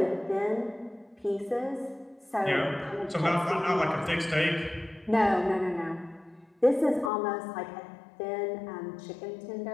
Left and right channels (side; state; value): right; drops out; at 7.1 s